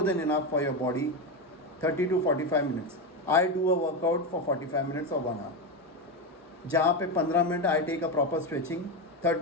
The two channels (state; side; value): normal; both; correlation 0.14